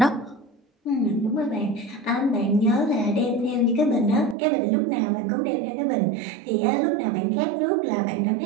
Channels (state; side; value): drops out; left; at 4.4 s